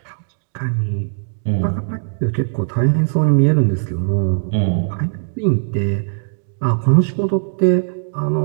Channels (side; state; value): left; silent; digital silence